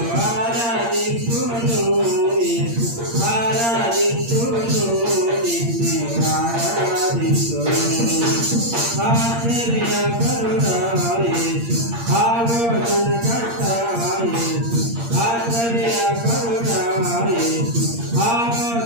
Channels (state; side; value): late; left; 8.6 ms